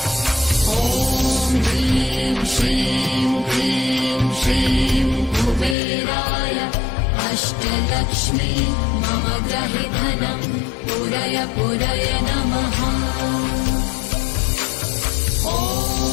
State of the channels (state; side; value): drops out; right; at 5.8 s